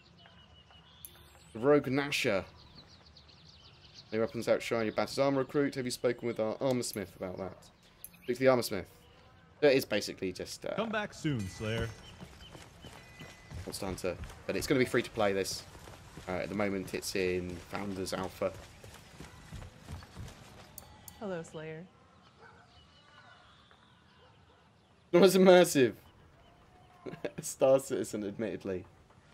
The Rogue Nasher. Your weapons outshine your battered armor recruit. Have you spoken with our armor smith about that? Speak to the armor smith. It is basically just... Come back soon, Slayer. Monster Hunter. But it's going to be free to play this. At the moment it's in Founders Alpha. Hello, Slayer. Not as immersive. Star Citizen, admittedly.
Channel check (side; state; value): both; identical; correlation 1.00